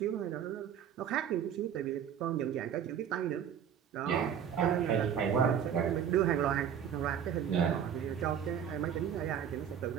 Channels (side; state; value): left; quieter; 8.7 dB